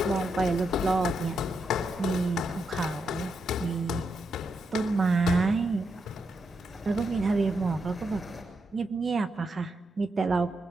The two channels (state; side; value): normal; both; correlation 0.83